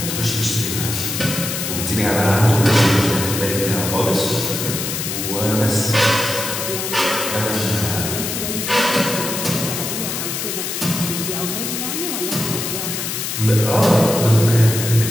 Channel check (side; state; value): left; noise; hiss, 4 dB below the sound